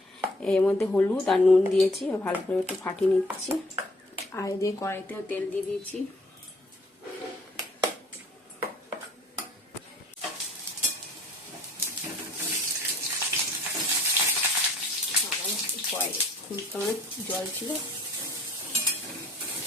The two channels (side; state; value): both; normal; correlation 0.57